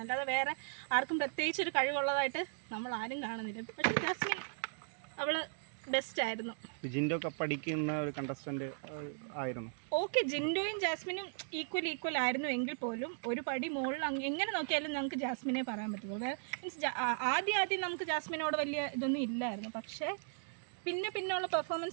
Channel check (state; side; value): silent; left; digital silence